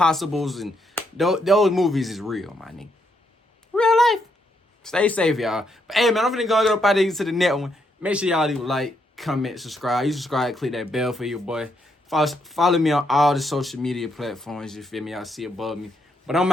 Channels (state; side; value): normal; both; correlation 0.76